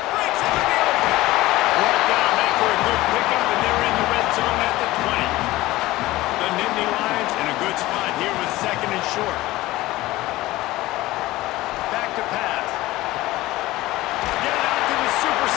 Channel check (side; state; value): right; quieter; 17.9 dB